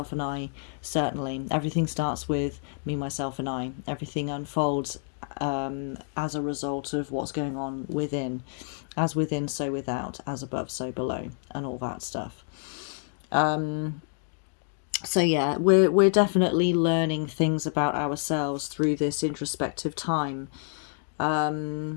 and I, certainly. Everything starts with Me, Myself and I. Everything unfolds as a result of what's going on within. As within, so without. As above, so below. And all that stuff. So yeah, we're definitely learning things about ourselves through this introspective time.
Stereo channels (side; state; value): right; silent; 59 dB below the other